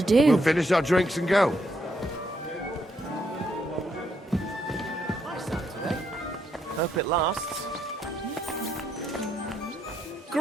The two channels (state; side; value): normal; both; correlation 0.76